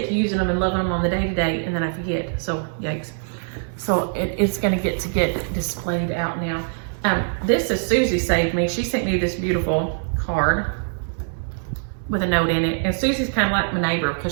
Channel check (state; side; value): silent; left; 60 dB below the other